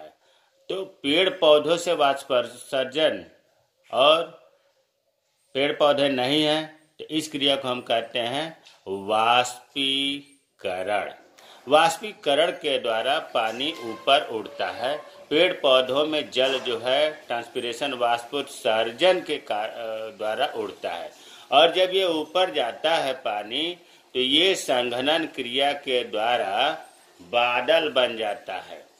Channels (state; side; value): identical; both; correlation 1.00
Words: तो पेड़ पौधों से वाष्पोत्सर्जन और पेड़ पौधे नहीं हैं, तो इस क्रिया को हम कहते हैं वाष्पीकरण। वाष्पीकरण के द्वारा पानी ऊपर उड़ता है। पेड़ पौधों में जल जो है ट्रांसपिरेशन वाष्पोत्सर्जन के द्वारा उड़ता है, और जब ये ऊपर जाता है पानी, तो ये संघनन क्रिया के द्वारा बादल बन जाता है।